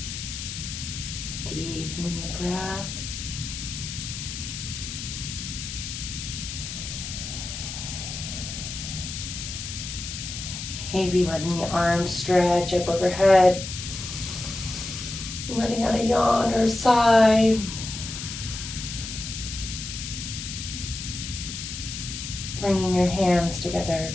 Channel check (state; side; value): noise; left; hiss, 7 dB below the sound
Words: Deepening the breath. Maybe letting the arms stretch up overhead. Letting out a yawn or a sigh. Bringing your hands together.